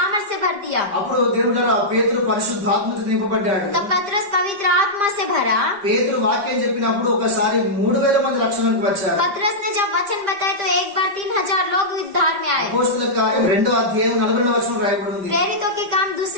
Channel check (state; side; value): late; left; 5.0 ms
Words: भर दिया। అప్పుడు దేవుడు పేతురు పరిశుద్ధాత్మతో నింపబడ్డాడు. तब पतरस पवित्र आत्मा से भरा। పేతురు వాక్యం చెప్పినప్పుడు ఒకసారి 3000 మంది రక్షణకు వచ్చారు. पतरस ने जब वचन बताए तो एक बार 3000 लोग उद्धार में आए। అపోస్తలుల కార్యం 2వ అధ్యాయం 42వ వచనం రాయబడి ఉంది. प्रेरितों के काम 2